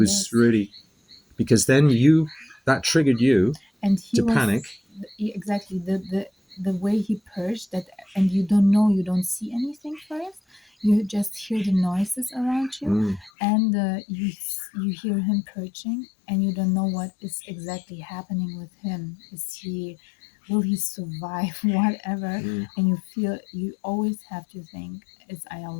really, because then that triggered you and to panic. Exactly. The way he purged that, and you don't see anything first. You just hear the noises around you, and you hear him purging, and you don't know what is exactly happening with him. Will he survive? Whatever, and you always have to think it's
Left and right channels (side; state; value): right; drops out; at 13.3 s